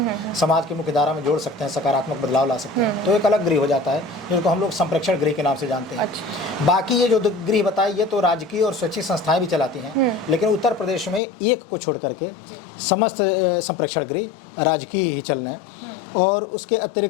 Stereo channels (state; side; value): drops out; right; at 11.2 s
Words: समाज की मुख्य धारा में जोड़ सकते हैं, सकारात्मक बदलाव ला सकते हैं, तो एक अलग गृह हो जाता है जिनको हम लोग संप्रेक्षण गृह के नाम से जानते हैं। बाकी ये जो गृह बताए ये तो राजकीय और स्वैच्छिक संस्थाएं भी चलाती हैं, लेकिन उत्तर प्रदेश में एक को छोड़ करके समस्त संप्रेक्षण गृह राजकीय ही चल रहे हैं। और उसके